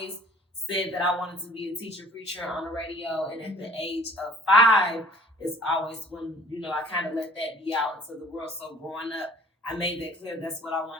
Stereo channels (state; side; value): normal; both; correlation 0.53